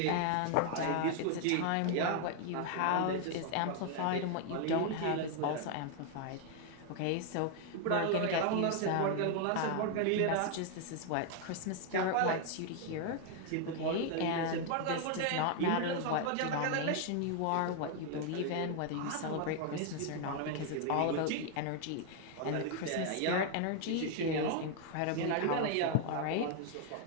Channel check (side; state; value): both; different; correlation 0.00